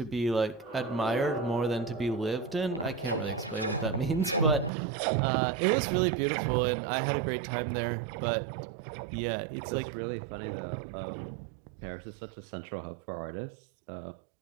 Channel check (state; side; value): drops out; left; at 4.7 s